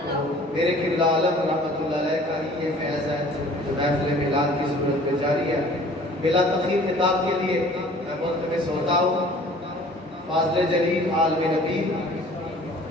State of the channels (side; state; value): both; normal; correlation 0.50